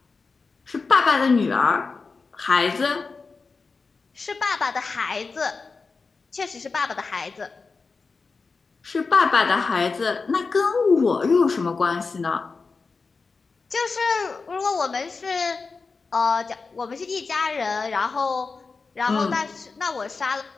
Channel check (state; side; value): quieter; right; 4.4 dB